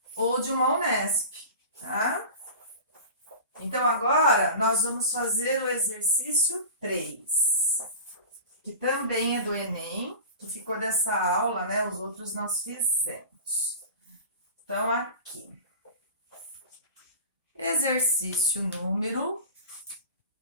ou de uma UNESP, tá? Então, agora, nós vamos fazer o exercício 3, que também é do Enem, que ficou dessa aula, né? Os outros nós fizemos. Então, aqui. Exercício número,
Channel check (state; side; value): inverted; both; correlation -0.34